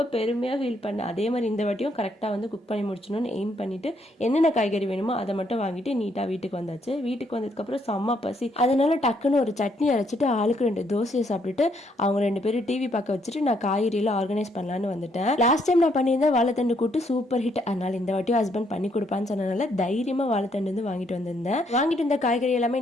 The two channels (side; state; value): both; normal; correlation 0.72